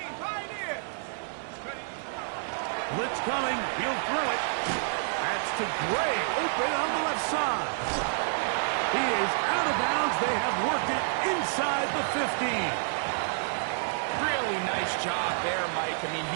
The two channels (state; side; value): silent; left; digital silence